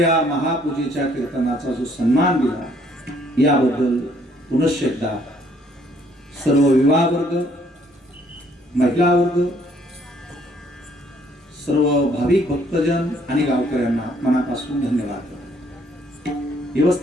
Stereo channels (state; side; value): normal; both; correlation 0.64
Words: महापूजेच्या कीर्तनाचा जो सन्मान दिला याबद्दल पुनश्च एकदा सर्व विवाह वर्ग, महिला वर्ग, सर्व भाविक भक्तजन आणि गावकऱ्यांना मनापासून धन्यवाद करतो.